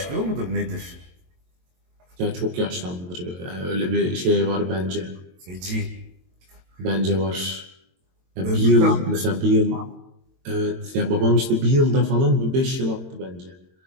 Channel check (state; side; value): late; left; 22 ms